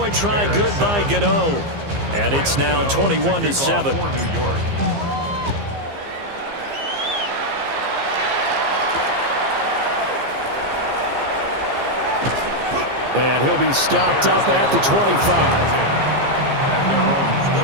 try, good by Gano. And it's now 21-7. And he'll be stopped up at the 25. At their own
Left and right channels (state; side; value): late; left; 15 ms